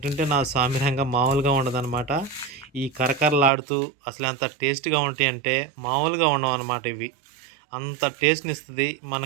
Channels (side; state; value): left; drops out; at 3.5 s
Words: నా సామిరంగా మామూలుగా ఉండదనమాట. ఈ కరకరలాడుతూ అసలు ఎంత టేస్ట్‌గా ఉంటాయంటే మామూలుగా ఉండవన్నమాట ఇవి. అంత టేస్ట్‌నిస్తది.